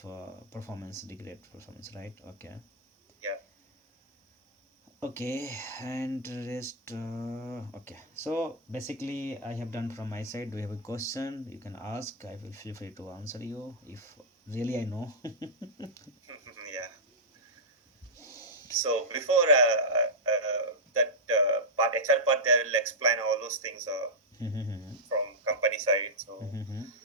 performance, degrade performance, right? Okay. yeah. Okay, and rest. Okay, so basically, I have done from my side. Do you have a question? You can ask. I will feel free to answer you if really I know. Yeah. So before that part, HR part, they will explain all those things from company side. So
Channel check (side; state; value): both; normal; correlation -0.09